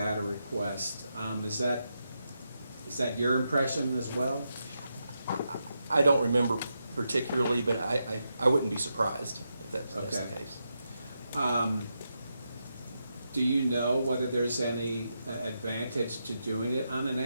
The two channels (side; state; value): both; inverted; correlation -0.85